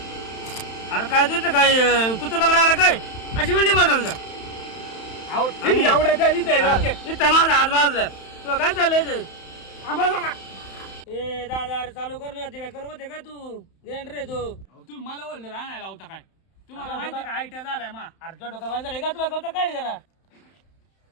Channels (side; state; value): right; late; 31 ms